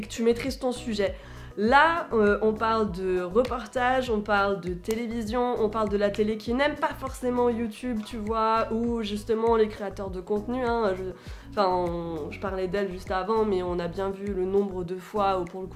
tu maîtrises ton sujet. Là, on parle de reportage, on parle de télévision, on parle de la télé qui n'aime pas forcément YouTube, tu vois, ou justement les créateurs de contenu, hein, je parlais d'elle juste avant, mais on a bien vu le nombre de fois où pour le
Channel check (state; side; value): identical; both; correlation 1.00